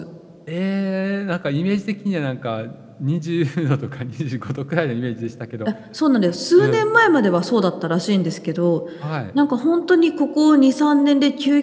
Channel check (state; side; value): identical; both; correlation 1.00